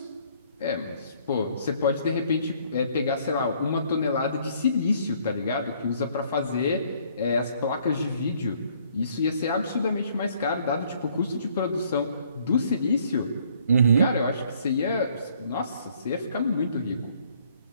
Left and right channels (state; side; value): inverted; both; correlation -0.63